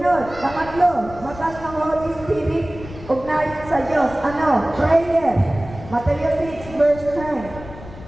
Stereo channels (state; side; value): noise; left; rumble, 15 dB below the sound